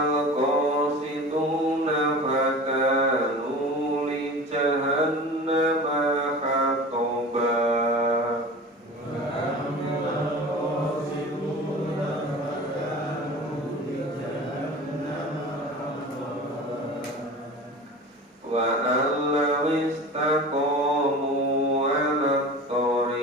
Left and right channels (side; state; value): both; normal; correlation 0.36